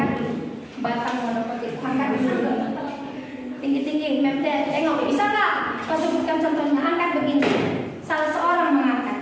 batang monokotil. Angkat dulu. Tinggi-tinggi, Mem tengok, bisa nggak? Kau sebutkan contohnya. Angkat begini. Salah seorang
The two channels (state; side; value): identical; both; correlation 1.00